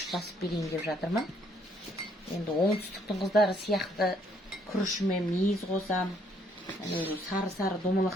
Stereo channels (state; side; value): normal; both; correlation 0.67